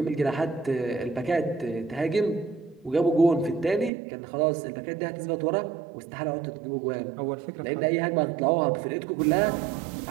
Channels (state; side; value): drops out; left; at 3.9 s